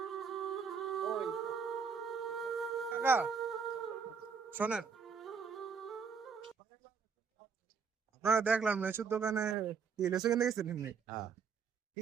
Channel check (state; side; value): quieter; left; 5.9 dB